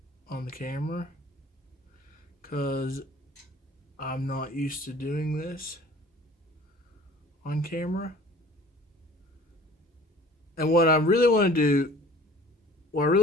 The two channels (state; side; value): normal; both; correlation 0.49